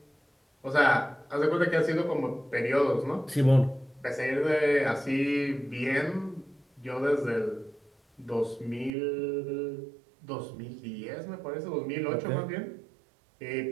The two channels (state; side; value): drops out; left; at 8.9 s